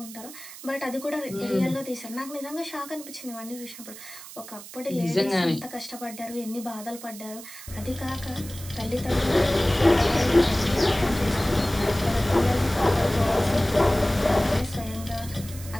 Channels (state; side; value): noise; right; hiss, 15 dB below the sound